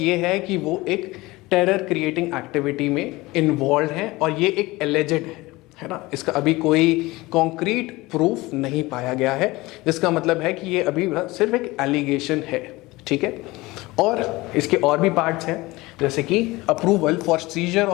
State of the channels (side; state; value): right; quieter; 20.8 dB